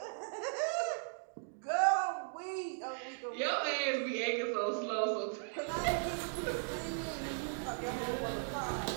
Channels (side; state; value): left; silent; digital silence